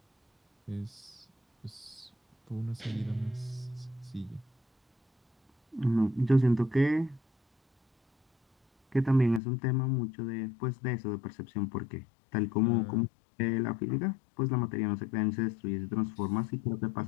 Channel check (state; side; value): drops out; right; at 9.4 s